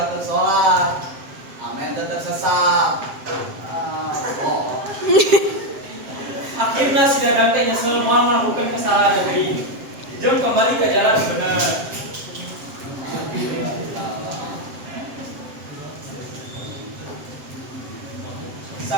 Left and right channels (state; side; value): late; left; 7.4 ms